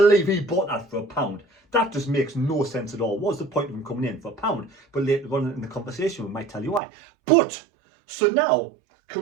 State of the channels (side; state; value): left; drops out; at 6.8 s